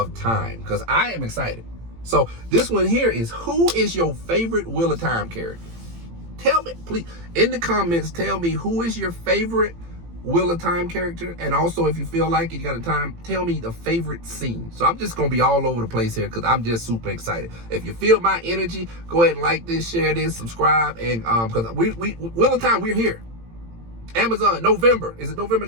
Time, because I am excited. So this one here is, who is your favorite Wheel of Time character? Tell me, please, in the comments, tell me who is your favorite Wheel of Time character. And also, if you feel like it, you got a time, tell me the favorite scene. So I'm just going to be all over the place here because I'm just super excited. If you feel my energy, go ahead and like this, share this, subscribe. And because we Wheel of Time, we're here. Amazon, November. Is it November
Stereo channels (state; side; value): late; left; 18 ms